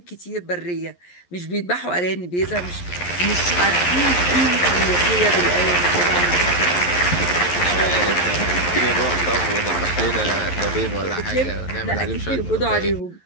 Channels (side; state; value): right; late; 11 ms